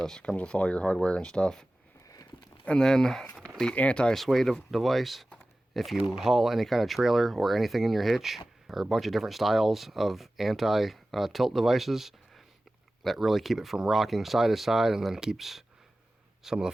Comes with all your hardware and stuff. And then the anti-sway device. If you haul any kind of trailer or anything in your hitch, or a bunch of different styles of anti-tilt devices that really keep it from rocking side to side, and then keeps some of the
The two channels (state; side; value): normal; both; correlation 0.96